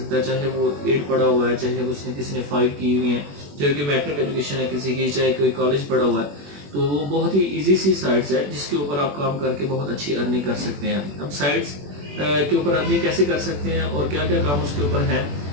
है, चाहे वो 8 पढ़ा हुआ है, चाहे उसने किसी ने 5 की हुई है, चाहे कि मैट्रिक एजुकेशन है किसी की, चाहे कोई कॉलेज पढ़ा हुआ है। तो वो बहुत ही इजी सी साइट्स है जिसके ऊपर आप काम करके बहुत अच्छी अर्निंग कर सकते हैं। अब साइट्स के ऊपर अर्निंग कैसे कर सकते हैं और क्या क्या काम उसके ऊपर है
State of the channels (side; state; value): left; late; 21 ms